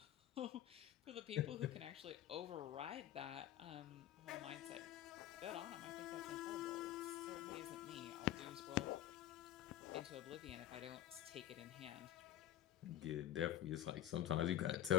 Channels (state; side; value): quieter; right; 12.4 dB